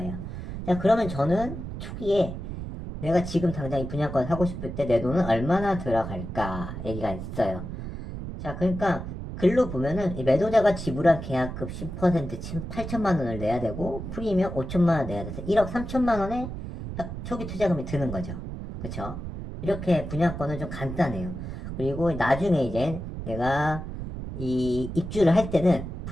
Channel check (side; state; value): right; noise; rumble, 8 dB below the sound